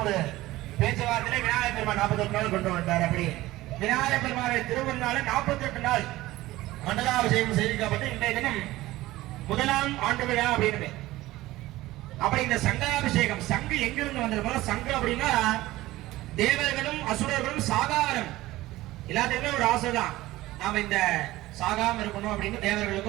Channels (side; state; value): left; quieter; 17.4 dB